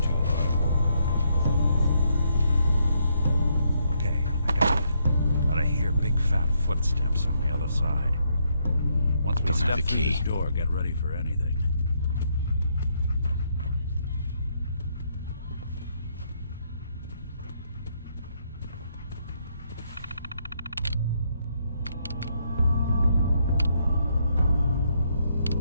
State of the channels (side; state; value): both; inverted; correlation -0.74